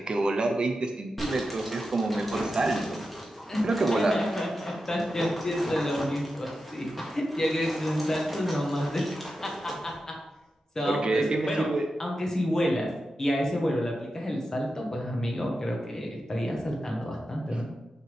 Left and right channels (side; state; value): both; normal; correlation 0.90